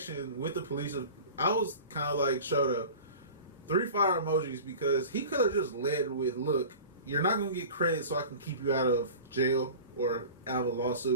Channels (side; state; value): both; inverted; correlation -0.38